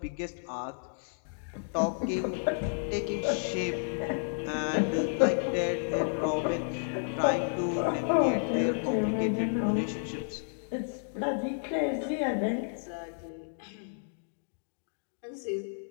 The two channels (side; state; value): right; silent; digital silence